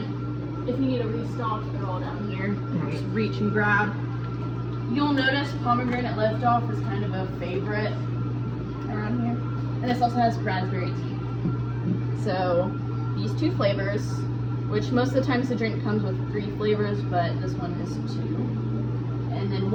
if you need a restock, they're all down here. Just reach and grab. You'll notice pomegranate liftoff is kind of a favorite around here. And this also has raspberry tea. So these two flavors, which most of the times the drink comes with 3 flavors, but this one is 2. And then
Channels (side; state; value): both; identical; correlation 1.00